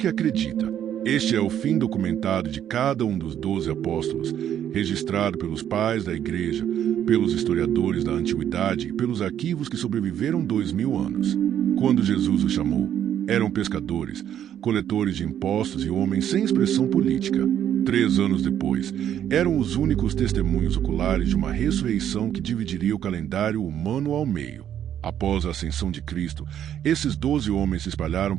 acredita. Este é o fim documentado de cada um dos 12 apóstolos, registrado pelos pais da igreja, pelos historiadores da antiguidade e pelos arquivos que sobreviveram 2000 anos. Quando Jesus os chamou, eram pescadores, coletores de impostos e homens sem expressão política. 3 anos depois, eram os únicos testemunhos oculares de uma ressurreição que dividiria o calendário humano ao meio. Após a ascensão de Cristo, esses 12 homens se espalharam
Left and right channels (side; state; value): left; quieter; 10.1 dB